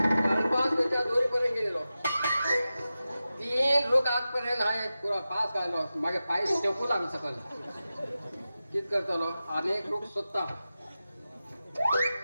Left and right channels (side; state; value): both; inverted; correlation -0.93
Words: त्याच्या दोरीपर्यंत गेलेलो 3 लोक आजपर्यंत आहे पुरा पास घालो मागे पाय टेकू लागलं सकाळी कित करतलो अनेक लोक स्वतः